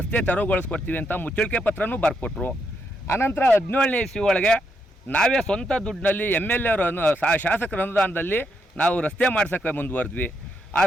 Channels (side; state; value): both; normal; correlation 0.79